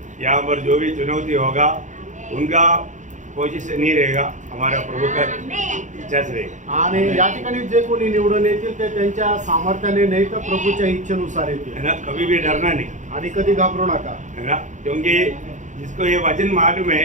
यहाँ पर जो भी चुनौती होगा उनका कोशिश से नहीं रहेगा, हमारा प्रभु का इच्छा से रहेगा। आणि या ठिकाणी जे कोणी निवडून येतील ते त्यांच्या सामर्थ्याने नाही तर प्रभूच्या इच्छेनुसार येतील, है ना। कभी भी डरना नहीं, आणि कधी घाबरू नका, है ना, क्योंकि जिसको ये वचन मालूम है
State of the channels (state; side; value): late; left; 0.36 ms